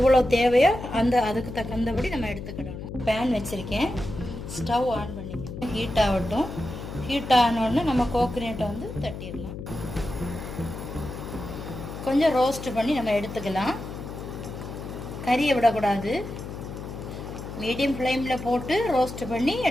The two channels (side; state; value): left; noise; hum, 9 dB below the sound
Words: தேவையோ அதுக்கு தகுந்தபடி நம்ம எடுத்துக்கிடணும். பேன் வச்சிருக்கேன். ஸ்டவ் ஆன் பண்ணிக்கணும். ஹீட் ஆகட்டும். ஹீட் ஆனோடனே நம்ம கோகனட்டை வந்து தட்டிடலாம். கொஞ்சம் ரோஸ்ட் பண்ணி நம்ம எடுத்துக்கலாம். கறியை விடக்கூடாது. மீடியம் ஃப்ளேமில் போட்டு ரோஸ்ட் பண்ணி